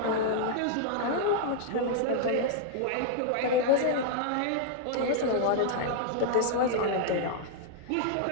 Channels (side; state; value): both; different; correlation -0.01